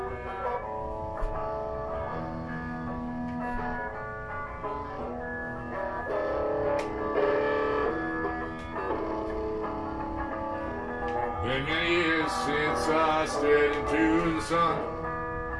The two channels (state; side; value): identical; both; correlation 1.00